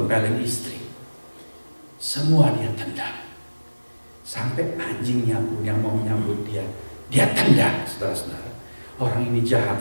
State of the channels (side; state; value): both; inverted; correlation -1.00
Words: istri. Semua dia tendang. Sampai anjingnya pun yang mau menyambut dia tendang, saudara-saudara. Orang ini jahat